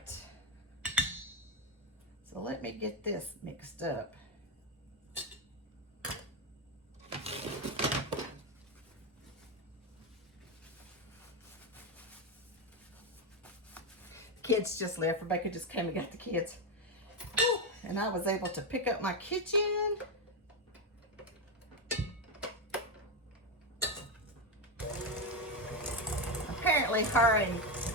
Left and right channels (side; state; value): both; normal; correlation 0.09